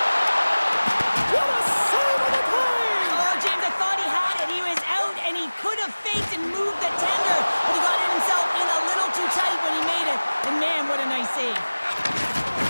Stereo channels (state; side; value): inverted; both; correlation -1.00